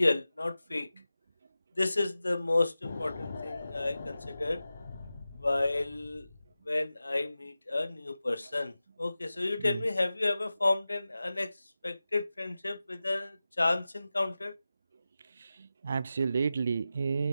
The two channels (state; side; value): inverted; both; correlation -0.94